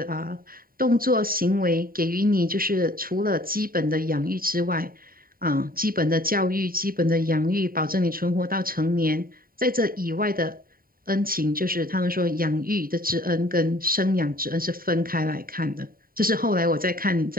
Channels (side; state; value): left; late; 0.42 ms